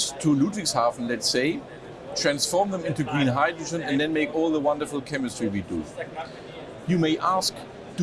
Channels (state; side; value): identical; both; correlation 1.00